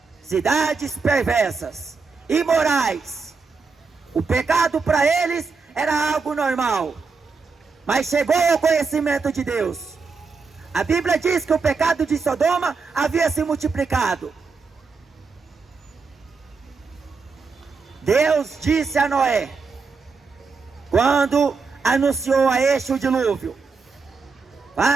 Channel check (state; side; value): quieter; left; 4.7 dB